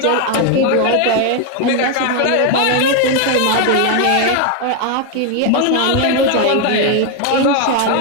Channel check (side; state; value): both; different; correlation 0.01